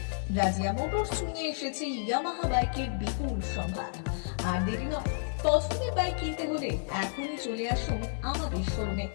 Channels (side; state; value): right; silent; digital silence